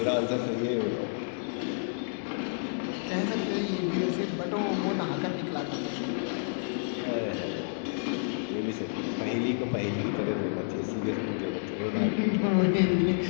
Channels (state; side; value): silent; right; digital silence